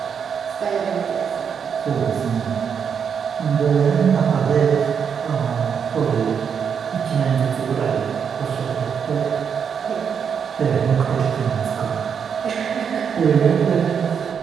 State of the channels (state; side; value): quieter; left; 7.1 dB